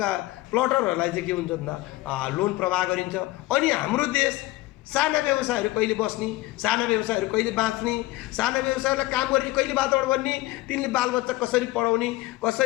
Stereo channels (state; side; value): quieter; right; 18.6 dB